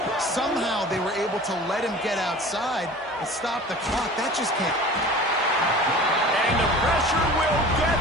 Somehow they were able to let him get outside and stop the clock. That just can't. And the pressure will get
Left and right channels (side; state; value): both; normal; correlation 0.41